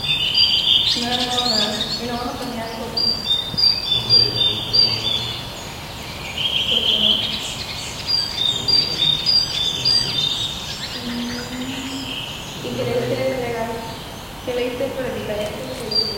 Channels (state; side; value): identical; both; correlation 1.00